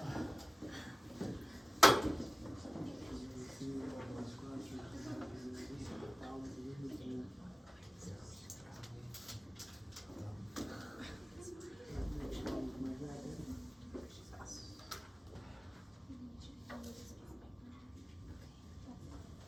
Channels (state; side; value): normal; both; correlation 0.96